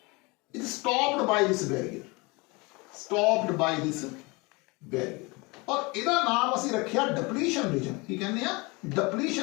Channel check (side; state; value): right; quieter; 26.4 dB